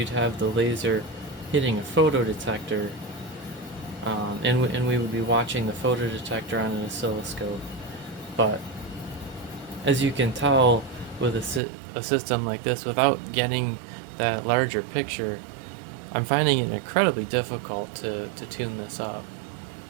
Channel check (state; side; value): drops out; left; at 11.6 s